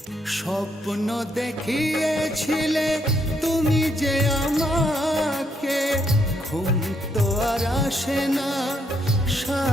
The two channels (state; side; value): normal; both; correlation 0.74